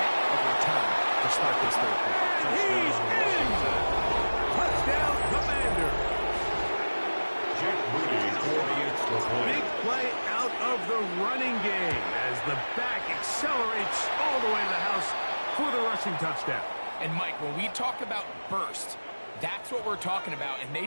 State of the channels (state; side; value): inverted; both; correlation -1.00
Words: of a return to start this third quarter. He's in! Touchdown, Commander! Jake Moody for the extra point. Big play out of the running game as the back accelerates all the way to the house for the rushing touchdown. And Mike, when we talk about burst, that's what we're talking about, and they